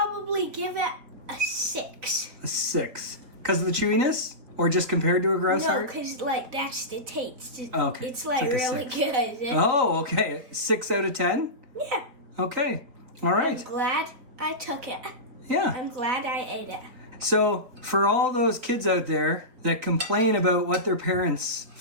give it a 6. A 6. Because of the chewiness? Or just compared to a grouse No, heart? because like that's the taste. Okay. It's like It's like a really 6. good. Oh, okay. 6 out of 10? Yeah. Okay. All right. I'm glad I took it. Yeah. I'm glad I ate it. So for all those kids out there that complain about what their parents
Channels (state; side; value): late; left; 4.3 ms